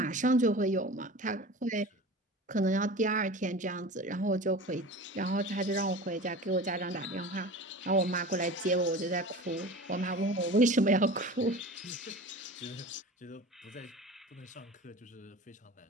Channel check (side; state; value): both; normal; correlation 0.35